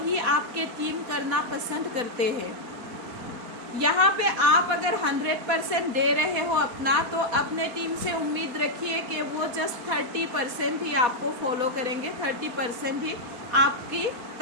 आपके टीम करना पसंद करते हैं। यहाँ पे आप अगर 100% दे रहे हो अपना, तो अपने टीम से उम्मीद रखिए कि वो जस्ट 30% ही आपको फॉलो करेंगे, 30% ही आपकी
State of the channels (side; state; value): left; late; 4.1 ms